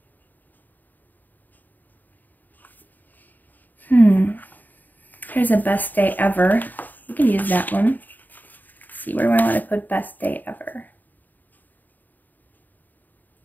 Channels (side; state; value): right; late; 0.086 ms